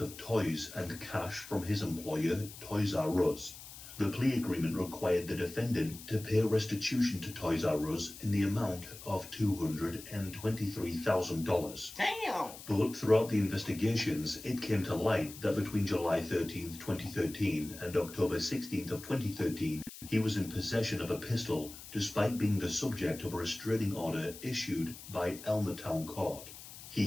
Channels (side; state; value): left; noise; hiss, 15 dB below the sound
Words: of toys and cash from his employer, Toys R Us. The plea agreement required the defendant to pay restitution to Toys R Us in the amount of $223,000. Damn! But throughout the investigations, it came to light that between July 13th, 2013 and October 16th of 2013, he was in possession of a pistol despite being the subject of a restraining order issued by Elmertown Court.